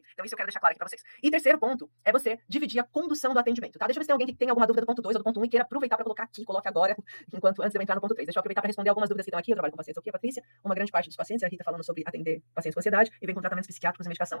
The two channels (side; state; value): both; inverted; correlation -1.00